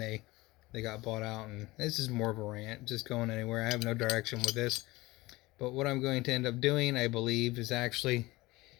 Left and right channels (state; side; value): quieter; right; 20.6 dB